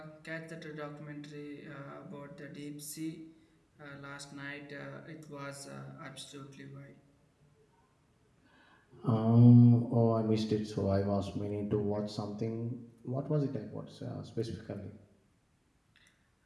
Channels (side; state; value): both; identical; correlation 1.00